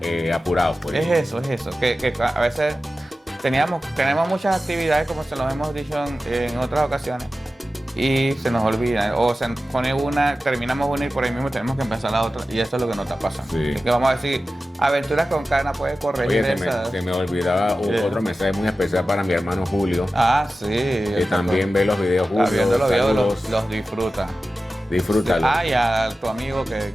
apurados. Pues. Es eso. Que a veces tenemos muchas actividades, como se los hemos dicho en otras ocasiones, y se nos olvida. O se pone una, terminamos una y por ahí mismo tenemos que empezar la otra. Y eso es lo que nos está pasando. Sí. Así que vamos a decir, Aventuras con Cana puede corregir Oye, esas. se me olvidaba Sí. otro mensaje muy especial para mi hermano Julio, Ah, sí. que también ve los videos. está Julio, viendo los videos, saludos, los disfruta. disfrútalo. Ah, y a tu amigo que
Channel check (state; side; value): normal; both; correlation 0.94